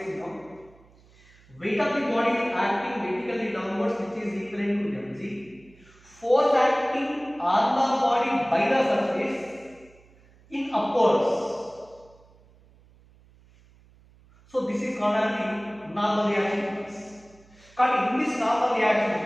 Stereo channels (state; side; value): noise; right; hum, 28 dB below the sound